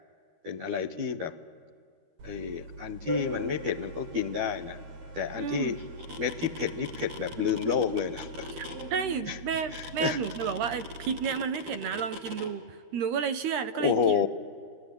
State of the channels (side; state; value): left; late; 13 ms